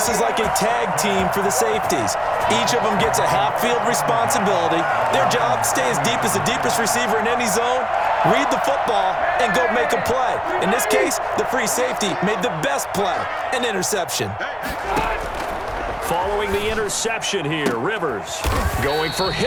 is like a tag team for the safeties. Each of them gets a half-field responsibility. Their job, stay as deep as the deepest receiver in any zone, read the football, and go make a play. In this case, the free safety made the best play, an interception. Following the interception here, Rivers going for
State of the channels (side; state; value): both; identical; correlation 1.00